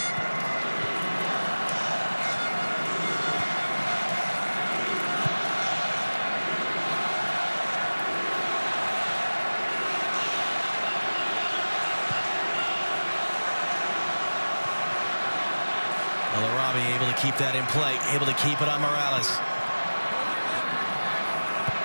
Able to keep that in play, able to keep it on Morales.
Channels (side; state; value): both; inverted; correlation -1.00